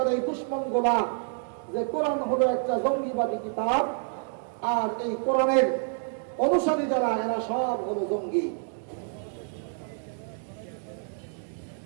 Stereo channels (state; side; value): silent; left; 59 dB below the other